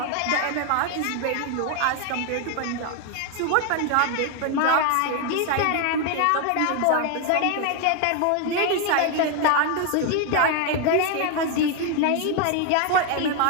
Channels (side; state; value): both; different; correlation 0.01